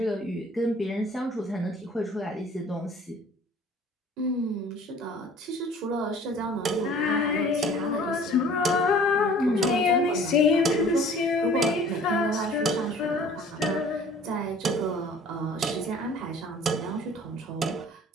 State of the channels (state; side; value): normal; both; correlation 0.50